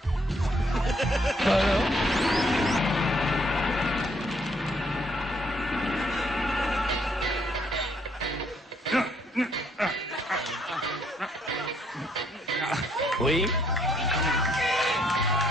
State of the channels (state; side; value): normal; both; correlation 0.69